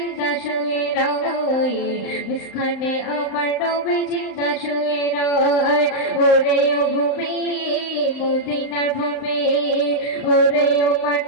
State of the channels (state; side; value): late; right; 35 ms